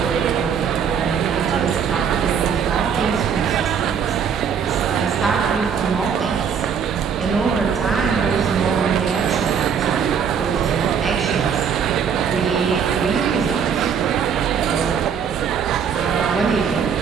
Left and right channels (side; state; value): left; quieter; 7.1 dB